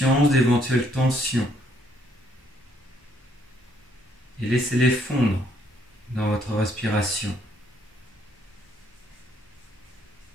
d'éventuelles tensions et laissez-les fondre dans votre respiration.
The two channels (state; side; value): normal; both; correlation 0.68